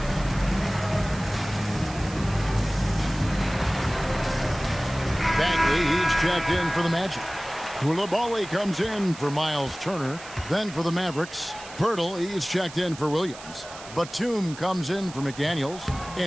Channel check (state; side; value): noise; right; hiss, 16 dB below the sound